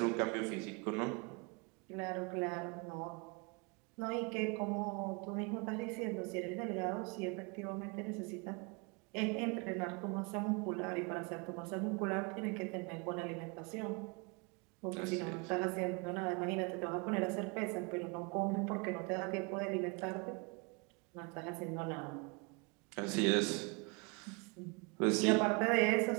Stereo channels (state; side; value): quieter; left; 31.2 dB